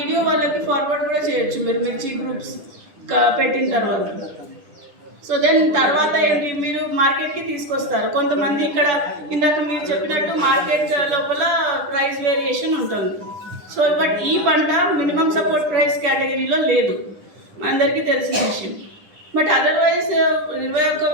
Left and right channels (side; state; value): left; late; 10 ms